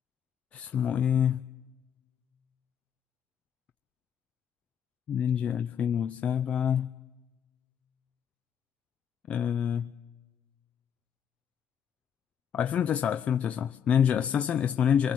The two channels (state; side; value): quieter; right; 8.3 dB